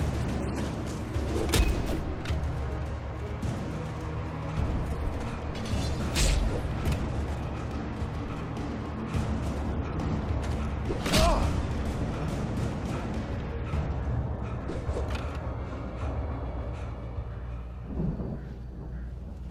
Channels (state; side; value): identical; both; correlation 1.00